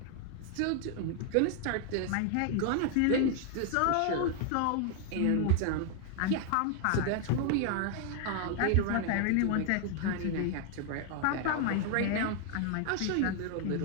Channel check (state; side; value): different; both; correlation 0.00